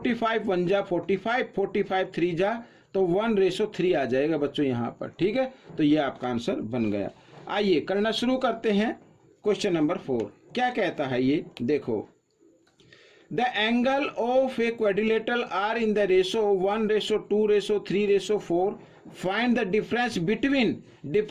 1 जा 45, 45 3 जा, तो 1:3 आ जाएगा बच्चों यहाँ पर। ठीक है, तो ये आपका आंसर बन गया। आइए करना शुरू करते हैं। क्वेश्चन नंबर 4 क्या कहता है ये देखो, the angle of a quadrilateral are in the ratio 1:2:3:4, find the difference between,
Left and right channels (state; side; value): identical; both; correlation 1.00